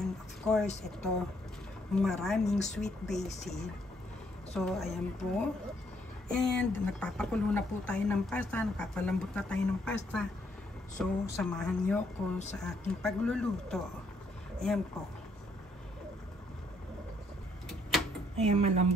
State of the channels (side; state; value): both; normal; correlation 0.70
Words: of course ito, maraming sweet basil. So ayan po, and nagpapakulo na po tayo ng pasta, nagpapalambot na tayo ng pasta. So samahan niyo ko sa aking pagluluto. Ayan po. Ayan,